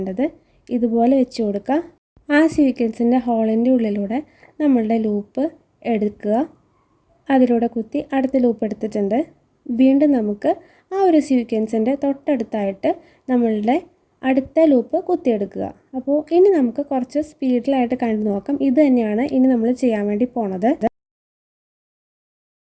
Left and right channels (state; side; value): identical; both; correlation 1.00